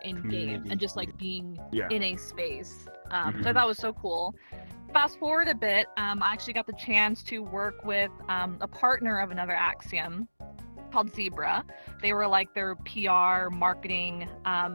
in game and just like being in a space. So that was so cool. Fast forward a bit, I actually got the chance to work with a partner of another Axiom called Zebra. They were like their PR marketing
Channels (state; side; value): inverted; both; correlation -1.00